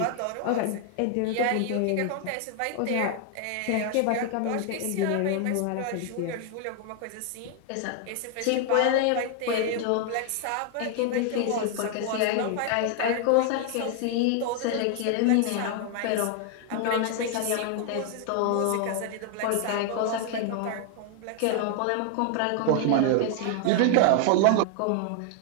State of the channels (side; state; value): both; different; correlation 0.00